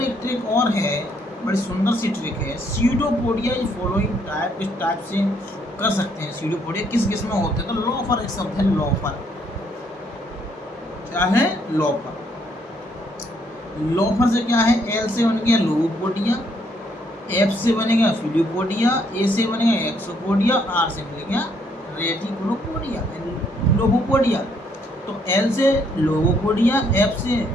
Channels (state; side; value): normal; both; correlation 0.69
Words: एक ट्रिक और है, बड़ी सुंदर सी ट्रिक है। स्यूडोपोडिया इस फॉलोइंग टाइप, इस टाइप से कर सकते हैं। स्यूडोपोडिया किस किस में होते हैं? तो लोफर एक शब्द है, लोफर। क्या है? लोफर। लोफर से क्या है? एल से बन गया लोगोपोडिया, एफ से बनेगा फिलियोपोडिया, ए से बनेगा एक्सोपोडिया, आर से बनेगा रेटिकुलोपोडिया, लोगोपोडिया। तो एल से लोगोपोडिया, एफ से